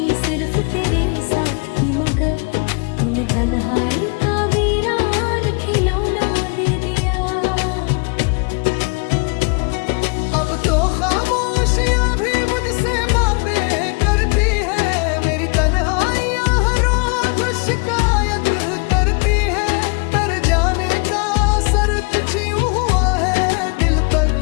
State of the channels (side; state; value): right; quieter; 33.4 dB